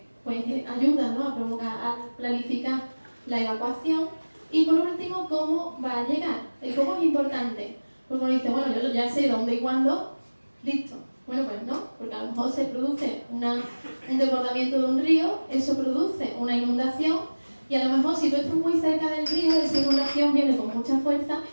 pues ayuda, ¿no? a planificar la evacuación. Y por último, ¿cómo va a llegar? El cómo es importante, porque uno dice, bueno, yo ya sé dónde y cuándo, listo. Bueno, pues no, porque a lo mejor se produce un desbordamiento de un río, eso produce una inundación, y a lo mejor si tú estás muy cerca del río, esa inundación viene con mucha fuerza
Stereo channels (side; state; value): both; inverted; correlation -1.00